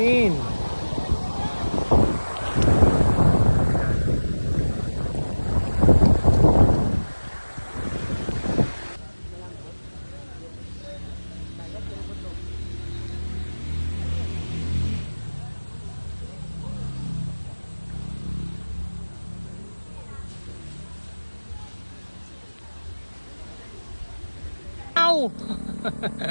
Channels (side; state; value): both; inverted; correlation -1.00